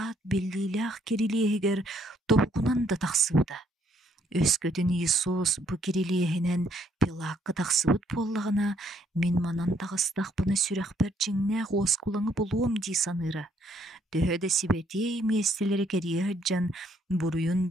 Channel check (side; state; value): both; normal; correlation 0.69